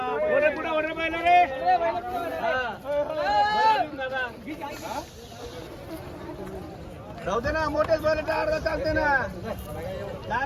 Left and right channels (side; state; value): both; identical; correlation 1.00